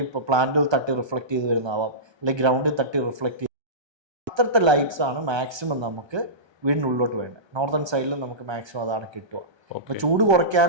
ഇപ്പോൾ പ്ലാന്റിൽ തട്ടി റിഫ്ലക്ട് ചെയ്ത് വരുന്നതാവാം, അല്ലെങ്കിൽ ഗ്രൗണ്ടിൽ തട്ടി റിഫ്ലക്ട് ചെയ്ത്, അത്രത്തെ ലൈറ്റ്സ് ആണ് മാക്സിമം നമുക്ക് വീടിനുള്ളിലോട്ട് വേണ്ടത്. നോർത്തേൺ സൈഡിൽ നമുക്ക് മാക്സിമം അതാണ് കിട്ടുക. അപ്പോൾ ചൂട്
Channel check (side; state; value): left; late; 1.3 ms